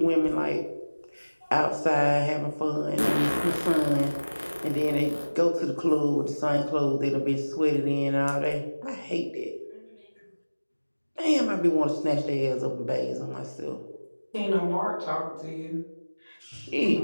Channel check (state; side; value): inverted; both; correlation -1.00